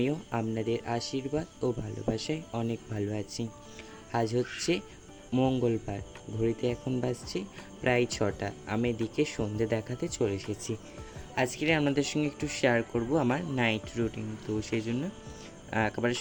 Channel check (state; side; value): identical; both; correlation 1.00